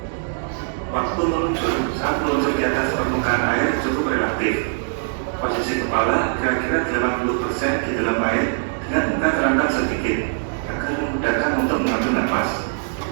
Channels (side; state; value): left; silent; digital silence